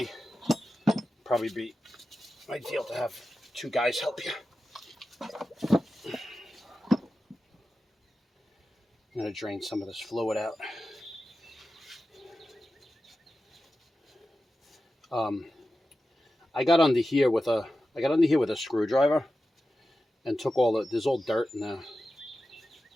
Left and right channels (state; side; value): normal; both; correlation 0.93